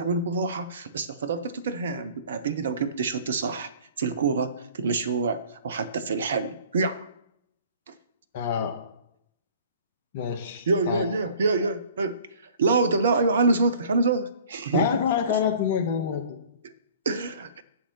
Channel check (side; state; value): both; inverted; correlation -0.49